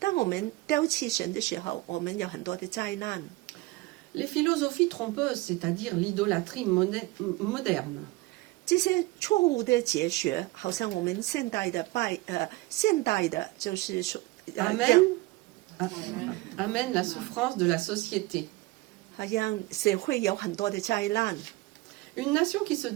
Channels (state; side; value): quieter; left; 20.3 dB